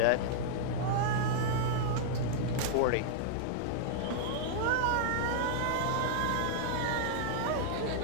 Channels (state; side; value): different; both; correlation -0.01